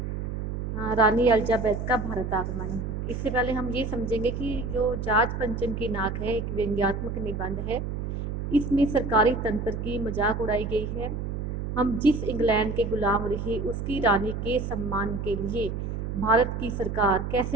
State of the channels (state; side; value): noise; right; hum, 4 dB below the sound